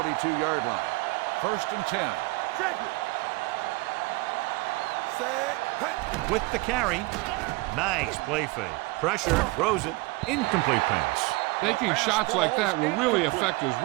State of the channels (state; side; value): quieter; left; 23.7 dB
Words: line. 1st and 10. Check it. Set. With the carry. Nice play fake. Pressure, throws it. Incomplete pass. Taking shots like that will really affect his